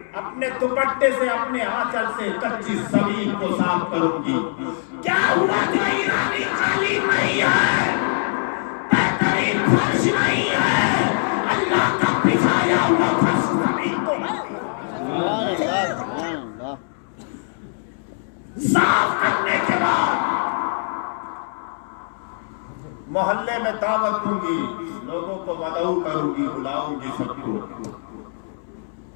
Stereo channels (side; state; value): right; silent; 64 dB below the other